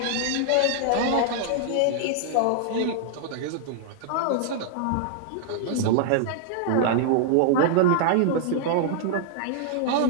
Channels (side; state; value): both; different; correlation -0.01